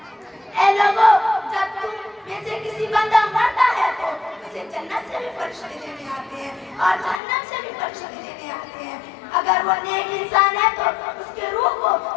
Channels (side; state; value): right; drops out; at 7.2 s